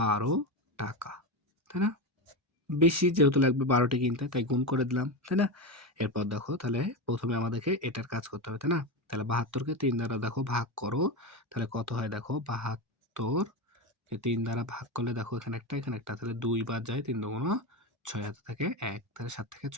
টাকা, তাই না? বেশি যেহেতু লাগবে ১২টি কিনতে, তাই গুণ করে দিলাম, তাই না? এরপর দেখো তাহলে প্রথমে আমাদেরকে এটার কাজ করতে হবে, তাই না? তাহলে ৭২ কে ৩ দ্বারা দেখো ভাগ করো, তাহলে কত হয় দেখো? ৭২ কে ৩ দ্বারা ভাগ করলে দেখো এখানে একটা এখানে একটা, তাহলে ২ বাদ যায়, ৩ দুগুণ ৬ হাতে থাকে ১, তাহলে ৭ থেকে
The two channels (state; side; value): normal; both; correlation 0.17